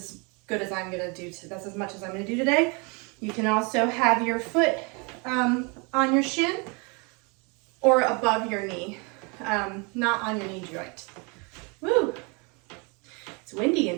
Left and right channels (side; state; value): left; quieter; 31.5 dB